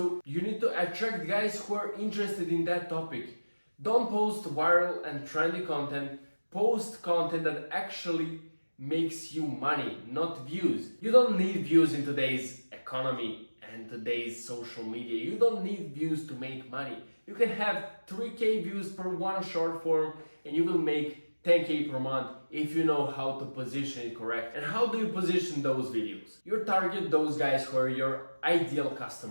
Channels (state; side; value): inverted; both; correlation -1.00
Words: you need to attract guys who are interested in that topic. Don't post viral and trendy content. Post content that actually makes you money, not views. You don't need views in today's economy and today's social media. You don't need views to make money. You can have 3K views per one short form and you will make 10K per month if you know how to position it correct. And how do you position those videos? You target those guys who are your ideal